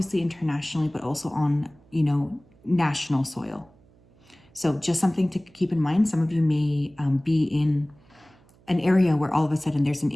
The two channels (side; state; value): right; noise; hum, 30 dB below the sound